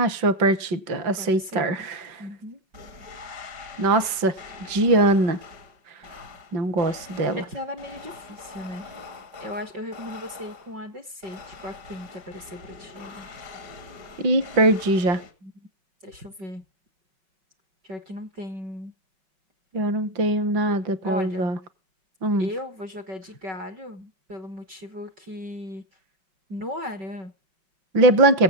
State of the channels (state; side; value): late; left; 5.8 ms